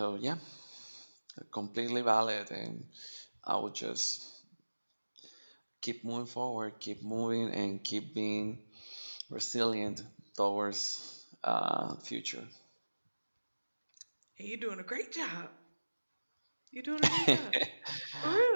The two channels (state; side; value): inverted; both; correlation -1.00